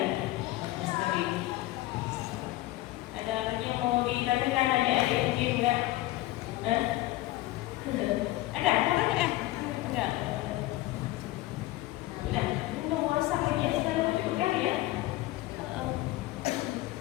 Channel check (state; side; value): quieter; right; 17.2 dB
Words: Ada lagi yang mau ditanyakan adik-adik mungkin enggak? Ada kan? Enggak. Udah, mau masak lagi ya sekarang cukup kali ya.